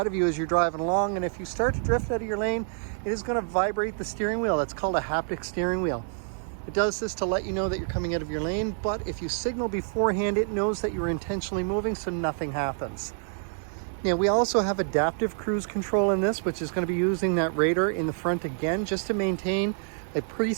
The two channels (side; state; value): left; silent; 60 dB below the other